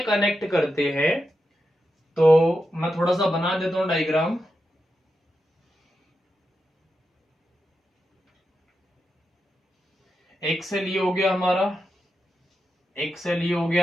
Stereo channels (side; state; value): both; normal; correlation 0.88